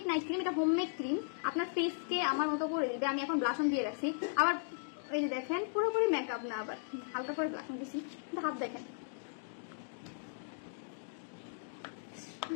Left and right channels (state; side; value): silent; right; digital silence